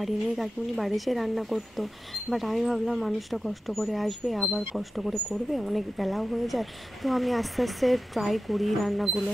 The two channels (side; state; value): both; normal; correlation 0.93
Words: নেই, কাকিমুনি বাড়ি এসে রান্না করতো, বাট আমি ভাবলাম মানুষটা কষ্ট করে আসবে, আবার কষ্ট করে করবে, অনেক বেলাও হয়ে যায়। তো আমি আস্তে আস্তে ট্রাই করি রান্নাগুলো।